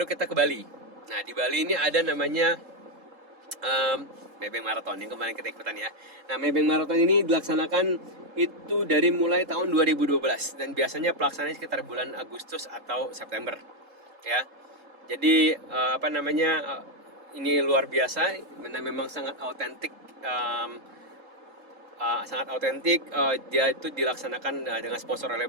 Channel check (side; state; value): left; late; 3.7 ms